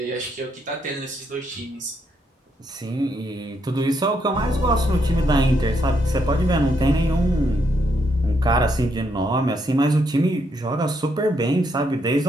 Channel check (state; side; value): normal; both; correlation 0.76